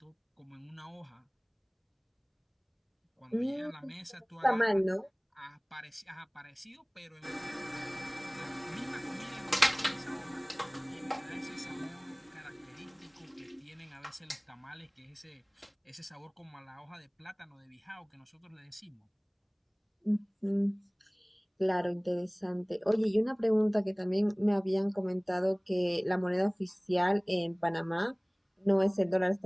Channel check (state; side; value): identical; both; correlation 1.00